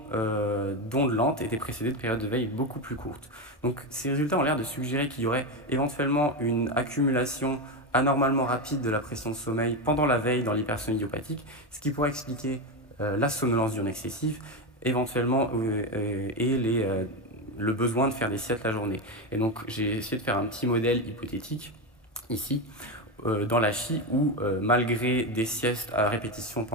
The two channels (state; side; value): normal; both; correlation 0.13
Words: d'ondes lentes étaient précédés de périodes de veille beaucoup plus courtes. Donc ces résultats ont l'air de suggérer qu'il y aurait éventuellement une accumulation anormalement rapide de la pression de sommeil pendant la veille dans l'hypersomnie idiopathique, ce qui pourrait expliquer la somnolence diurne excessive, éventuellement, et le besoin de faire des siestes la journée. Et donc j'ai essayé de faire un petit modèle hypothétique, ici, dans la HI, où malgré des siestes à répétition